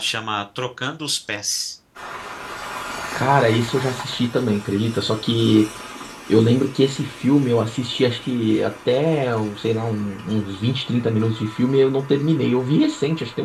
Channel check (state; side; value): identical; both; correlation 1.00